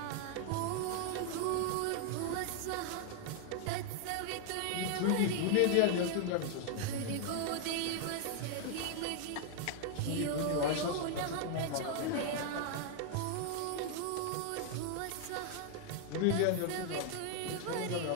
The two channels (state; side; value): different; both; correlation 0.00